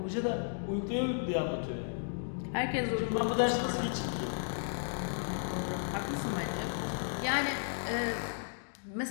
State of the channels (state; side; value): silent; right; digital silence